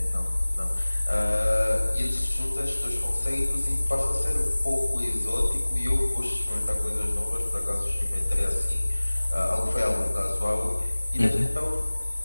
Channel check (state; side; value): inverted; both; correlation -1.00